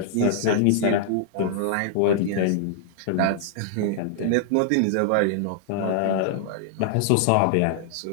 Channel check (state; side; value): different; both; correlation -0.01